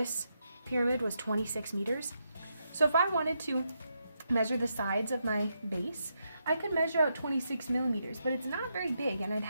pyramid was 26 meters. So if I wanted to measure the sides of my base, I could measure out 26 millimeters, but it's not very big and I'd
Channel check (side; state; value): both; inverted; correlation -0.82